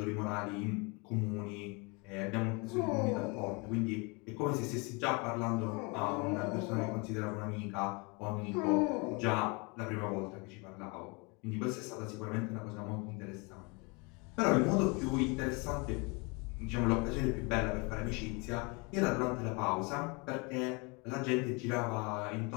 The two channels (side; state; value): right; quieter; 29.7 dB